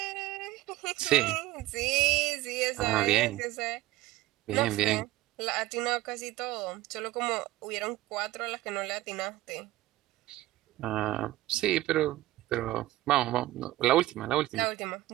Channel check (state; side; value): quieter; left; 16.7 dB